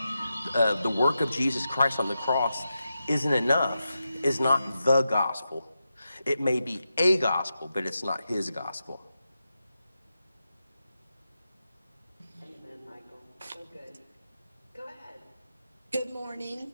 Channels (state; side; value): inverted; both; correlation -0.89